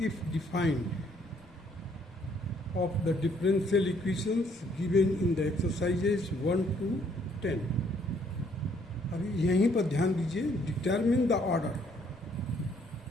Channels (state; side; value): noise; left; rumble, 28 dB below the sound